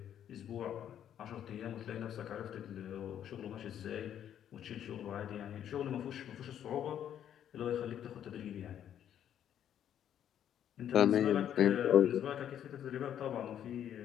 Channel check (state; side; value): quieter; right; 10.0 dB